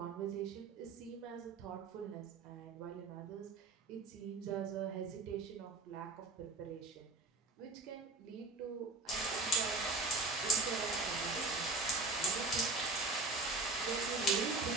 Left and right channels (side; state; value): left; quieter; 3.4 dB